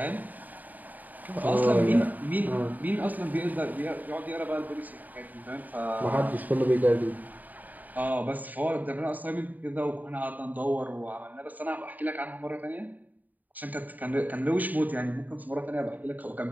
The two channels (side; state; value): left; late; 0.082 ms